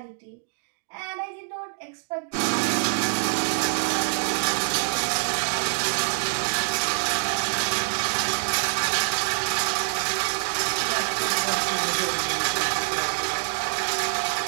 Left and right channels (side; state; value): left; silent; digital silence